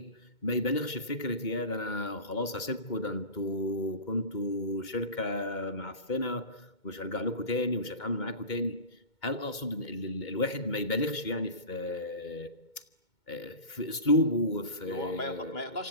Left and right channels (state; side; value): late; right; 2.2 ms